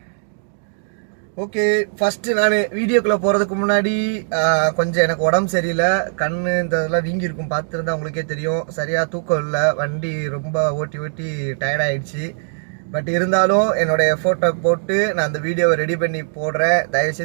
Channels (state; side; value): silent; left; digital silence